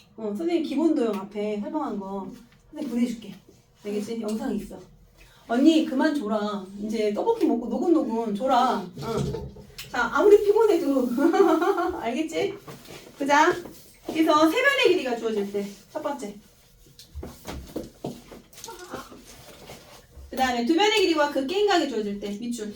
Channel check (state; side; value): identical; both; correlation 1.00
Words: 선생님 기본도형 앞에 설명한 거 선생님 보내줄게. 알겠지? 영상이 있어. 언니 그만 줘라. 이제 떡볶이 먹고 노곤노곤 줘라. 자, 아무리 피곤해도 알겠지? 보자. 그래서 세 변의 길이가 주어질 때 첫 번째. 그 다음에 두 변의 길이와 그 끼인각이 주어질 때 밑줄.